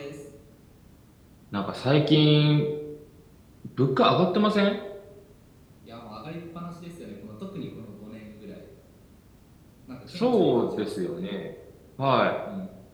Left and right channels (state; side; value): identical; both; correlation 1.00